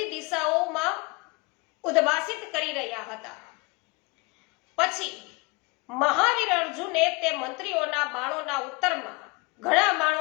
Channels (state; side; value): quieter; right; 26.8 dB